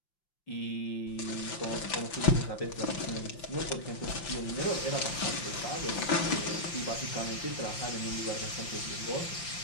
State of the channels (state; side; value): late; right; 6.0 ms